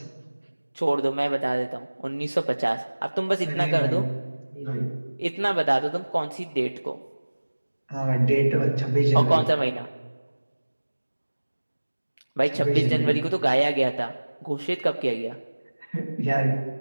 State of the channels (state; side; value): inverted; both; correlation -1.00